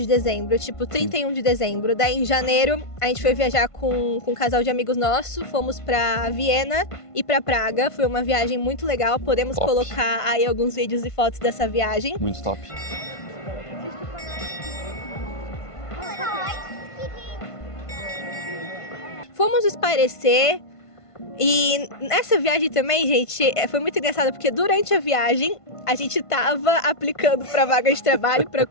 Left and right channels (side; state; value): right; late; 1.5 ms